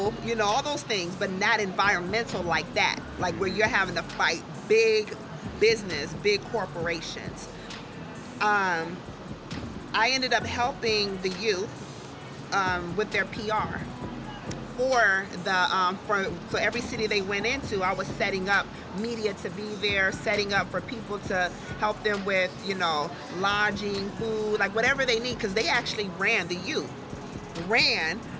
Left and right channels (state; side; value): identical; both; correlation 1.00